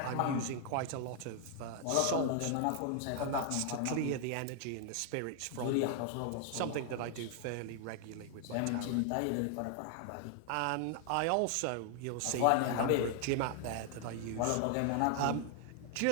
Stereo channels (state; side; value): different; both; correlation 0.00